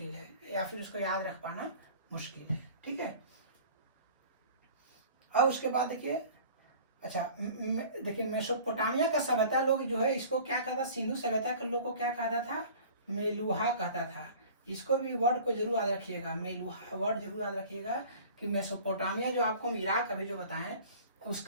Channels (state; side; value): inverted; both; correlation -0.45